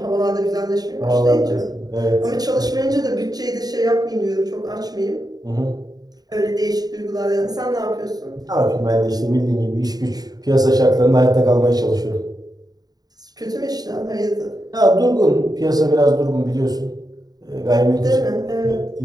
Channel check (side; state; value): left; late; 0.19 ms